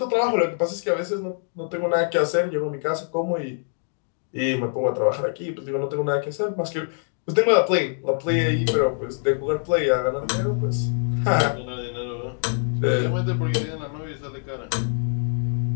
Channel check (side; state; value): right; silent; 62 dB below the other